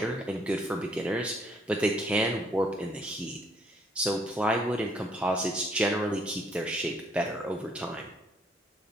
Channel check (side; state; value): both; normal; correlation 0.66